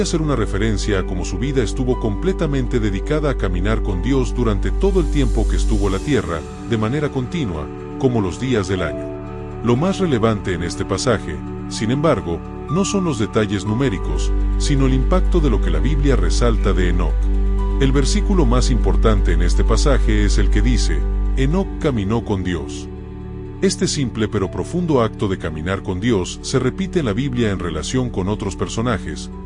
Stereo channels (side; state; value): both; identical; correlation 1.00